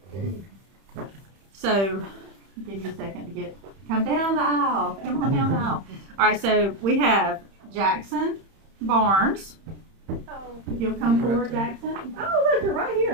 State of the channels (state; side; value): late; left; 31 ms